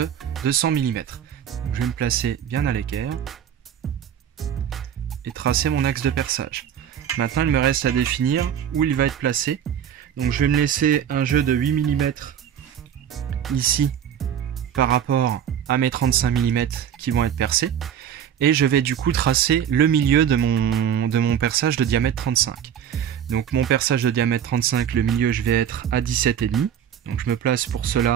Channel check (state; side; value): quieter; left; 9.0 dB